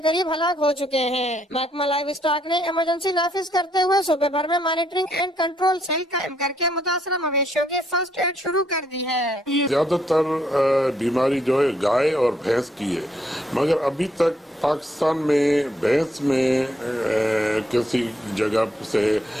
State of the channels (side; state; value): both; normal; correlation 0.72